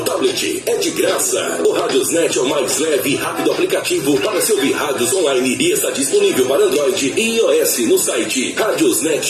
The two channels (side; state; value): both; identical; correlation 1.00